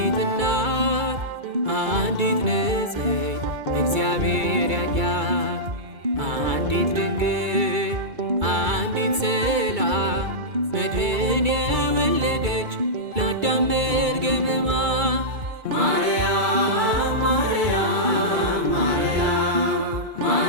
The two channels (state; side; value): late; left; 2.3 ms